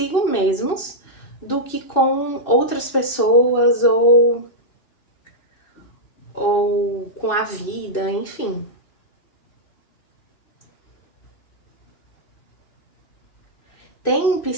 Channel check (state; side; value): late; right; 2.6 ms